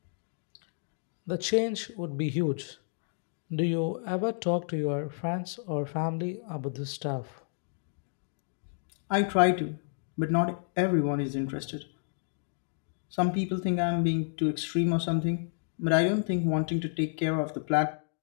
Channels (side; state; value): right; silent; digital silence